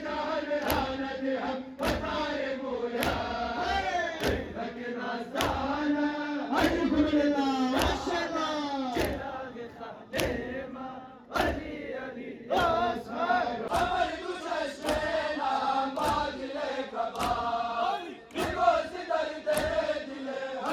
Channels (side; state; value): both; identical; correlation 1.00